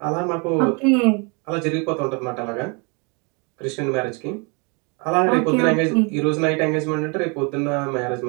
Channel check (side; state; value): left; quieter; 32.6 dB